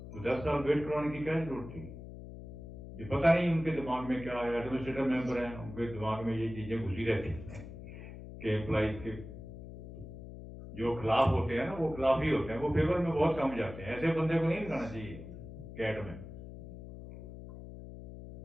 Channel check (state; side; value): noise; left; hum, 12 dB below the sound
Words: तो 10 साल वेट करवाने की क्या जरूरत थी। ये पता नहीं उनके दिमाग में क्या है। एडमिनिस्ट्रेटिव मेंबर हैं, उनके दिमाग में ये चीजें घुसी रहती हैं कि एम्प्लॉइज के जो खिलाफ होते हैं ना, वो खिलाफ ही होते हैं, वो फेवर में बहुत कम जाते हैं। ऐसे बंदे को नहीं लगाना चाहिए कैट में।